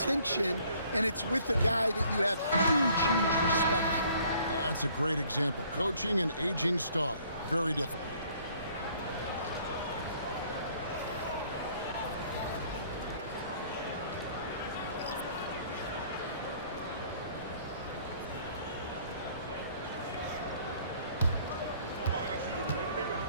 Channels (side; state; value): both; inverted; correlation -0.59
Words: and it's with a guy that you have huge respect for. That's a great example. Coaching an aging star. Very difficult.